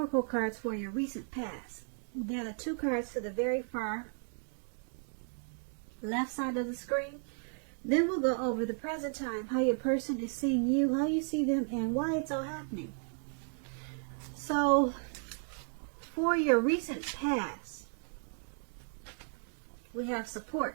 cards for your recent past. They're the 2 cards to the very far left side of the screen. Then we'll go over the present time, how your person is seeing you, how you see them, and why it's all happening. So, for your recent past, we have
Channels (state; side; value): silent; left; 55 dB below the other